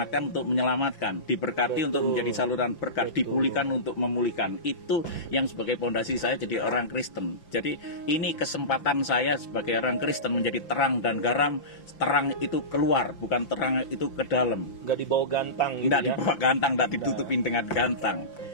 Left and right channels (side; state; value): right; late; 5.8 ms